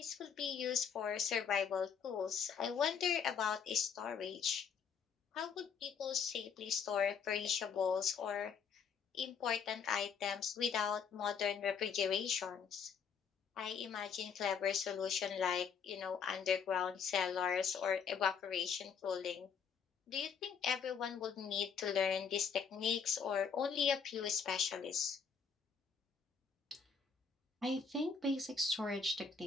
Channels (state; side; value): quieter; right; 6.5 dB